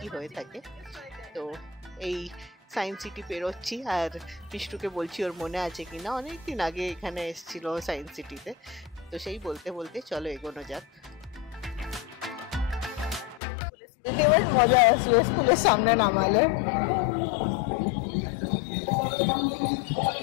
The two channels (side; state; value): right; drops out; at 13.4 s